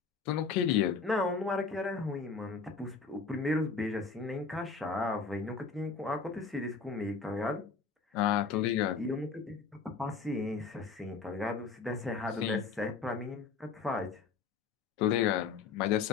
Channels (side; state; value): right; quieter; 5.1 dB